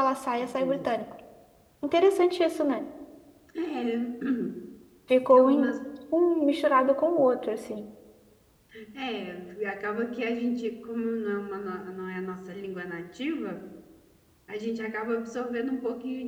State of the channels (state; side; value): identical; both; correlation 1.00